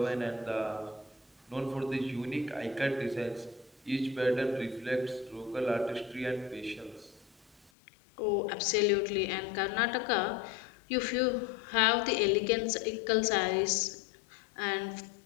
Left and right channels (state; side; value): drops out; right; at 7.7 s